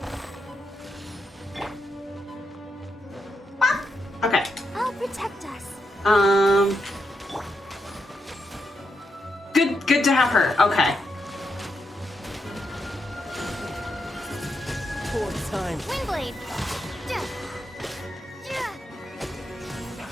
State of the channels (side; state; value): both; normal; correlation 0.83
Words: Okay. I'll protect us. Good to have her. Okay. Poor time. Windblade.